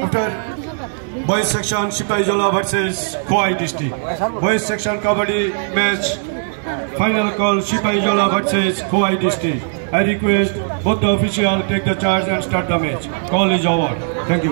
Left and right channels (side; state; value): left; silent; digital silence